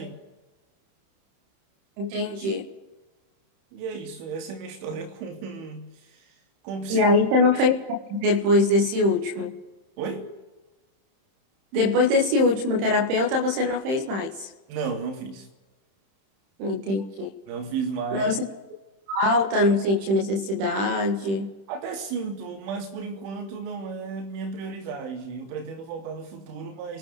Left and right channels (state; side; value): late; left; 31 ms